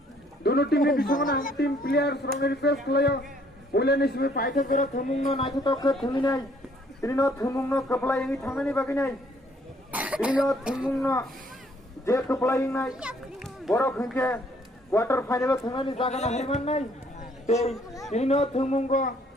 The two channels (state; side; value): normal; both; correlation 0.63